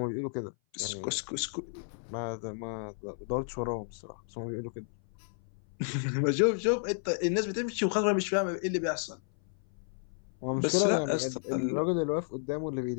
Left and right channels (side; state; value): right; silent; 56 dB below the other